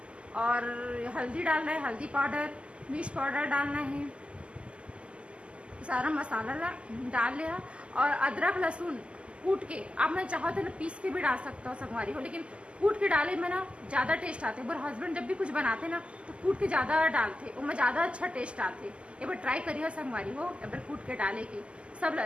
और हल्दी डालना है, हल्दी पाउडर, मिर्च पाउडर डालना है, सारा मसाला डाल लिया। और अदरक लहसुन कूट के आप मैं चाहो तो पीस के भी डाल सकता हूँ संगवारी हो, लेकिन कूट के डाले में ना ज़्यादा टेस्ट आते। मेरे हस्बैंड जब भी कुछ बनाते ना तो कूट के ज़्यादा डालते, उनमें ज़्यादा अच्छा टेस्ट आते। एक बार ट्राई करिए संगवारी हो, एक बार कूट के डाले के सब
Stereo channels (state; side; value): late; left; 0.054 ms